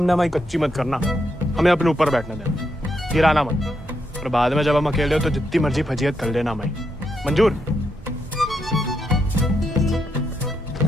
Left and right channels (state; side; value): normal; both; correlation 0.81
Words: हमारी कच्ची मत करना। हमें अपने ऊपर बैठने देना, गिराना मत। और बाद में जब हम अकेले हो तो जितनी मर्जी फजीयत कर लेना हमारी। मंजूर?